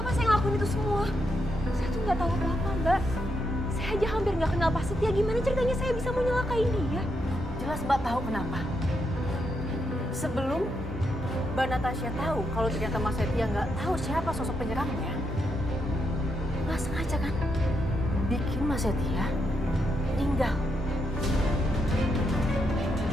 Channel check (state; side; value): normal; both; correlation 0.81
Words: saya ngelakuin itu semua? Saya tuh nggak tahu apa-apa, Mbak. Saya aja hampir nggak kenal Pak Setia. Gimana ceritanya saya bisa mau nyelakain dia? Jelas Mbak tahu kenapa. Sebelum Mbak Natasha tahu kalau ternyata Mas Setia nggak tahu siapa sosok penyerangnya, nggak sengaja kan bikin Mas Setia meninggal.